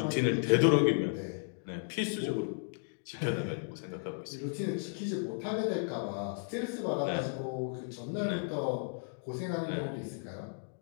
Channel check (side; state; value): right; silent; digital silence